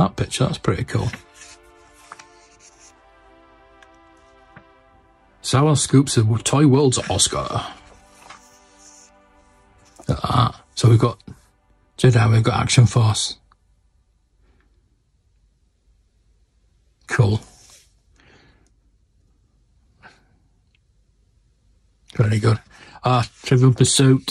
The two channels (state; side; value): identical; both; correlation 1.00